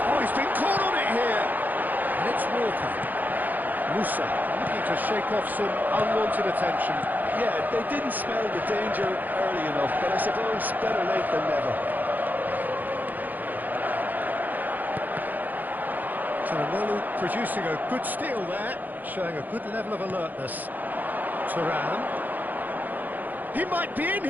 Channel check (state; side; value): late; left; 0.084 ms